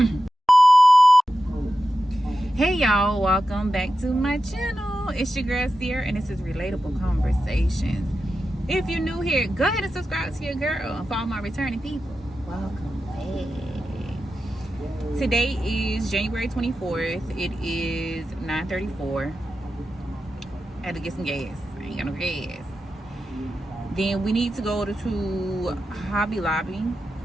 Hey y'all, welcome back to my channel. It's your girl Sierra and this is Relatable Conversations. If you're new here, go ahead and subscribe to your girl and follow my returning people. Welcome back. Today is January 24th. It is 9:34. I had to get some gas. I ain't got no gas. Then we need to go to Hobby Lobby.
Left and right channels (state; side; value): normal; both; correlation 0.91